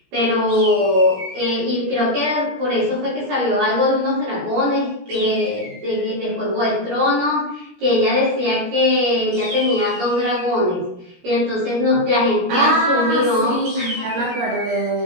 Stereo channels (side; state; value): left; late; 17 ms